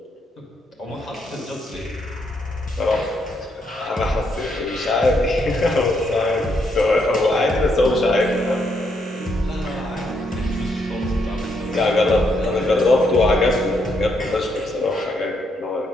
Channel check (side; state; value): both; normal; correlation 0.76